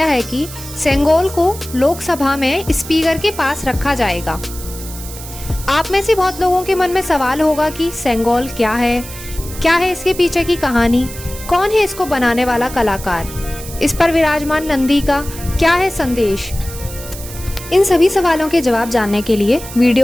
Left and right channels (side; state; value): right; noise; hiss, 13 dB below the sound